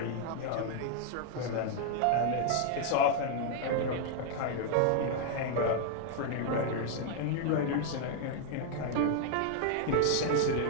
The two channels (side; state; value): both; different; correlation 0.00